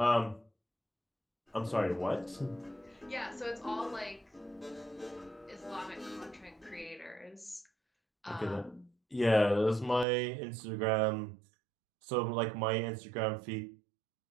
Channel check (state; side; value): drops out; left; at 10.1 s